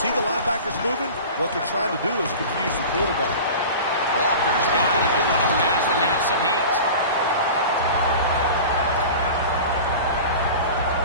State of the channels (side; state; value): both; inverted; correlation -0.35